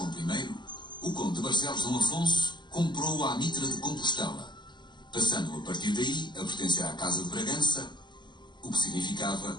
I, o conde de Barcelos Dom Afonso comprou a Mitra de Compostela, passando a partir daí a pertencer à Casa de Bragança, o que significava,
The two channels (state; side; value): late; right; 0.22 ms